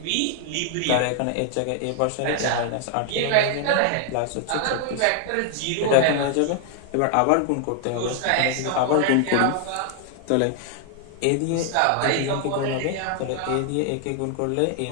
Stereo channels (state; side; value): different; both; correlation 0.00